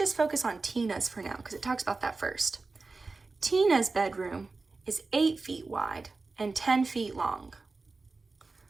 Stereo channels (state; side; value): quieter; left; 3.8 dB